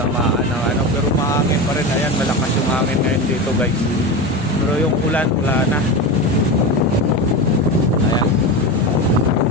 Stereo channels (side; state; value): both; normal; correlation 0.22